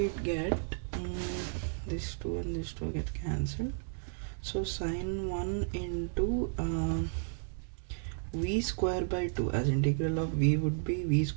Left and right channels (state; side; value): silent; left; 56 dB below the other